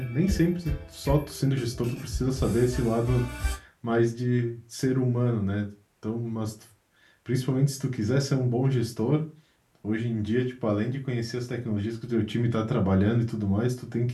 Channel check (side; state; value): both; identical; correlation 1.00